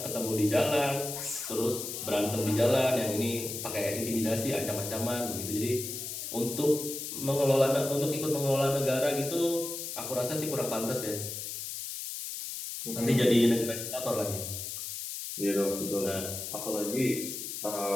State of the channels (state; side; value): noise; left; hiss, 6 dB below the sound